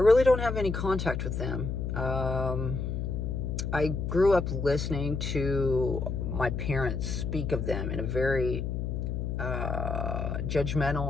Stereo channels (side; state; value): left; noise; hum, 2 dB below the sound